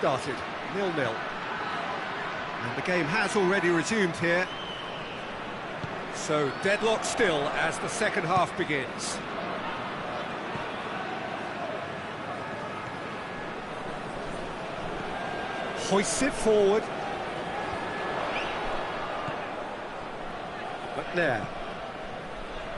0-0. And the game has already resumed here. So, deadlock still as the second half begins. Hoists it forward. McNair.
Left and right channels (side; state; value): both; identical; correlation 1.00